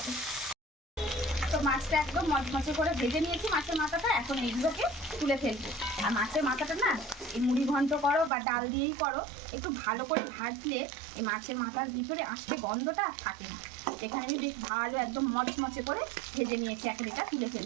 তো মাছটা একদম মচমচে করে ভেজে নিয়েছি মাছের মাথাটা, এখন এইগুলোকে তুলে ফেলবো। আর মাছের মাথাটা না এই মুড়ি ঘন্ট করো বা ডাল দিয়েই করো, একটু ভালো করে ভাজলে এই মাছের মাথার ভিতরে আস্তে গন্ধটা থাকে না। এখানে আমি বেশ ভালো একদম মচমচে করে ভেজে নিয়েছি, এখন এটা তুলে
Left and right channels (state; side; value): drops out; left; at 8.3 s